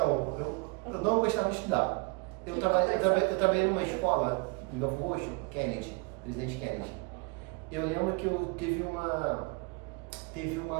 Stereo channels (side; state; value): left; quieter; 29.9 dB